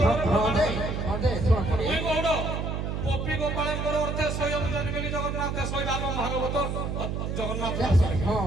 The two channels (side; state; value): right; noise; hum, 3 dB below the sound